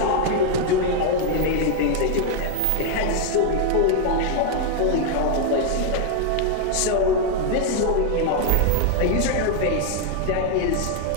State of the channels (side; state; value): both; different; correlation 0.00